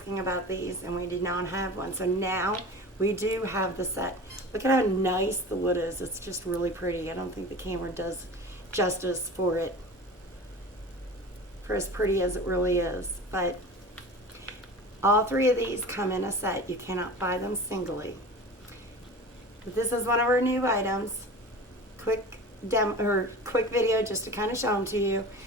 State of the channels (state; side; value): normal; both; correlation 0.36